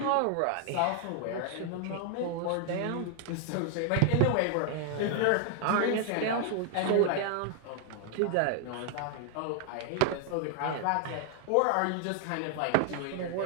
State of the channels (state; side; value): different; both; correlation 0.00